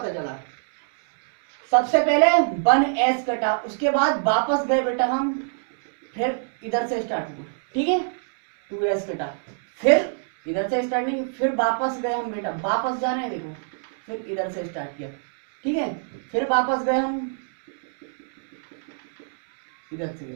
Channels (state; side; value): silent; left; digital silence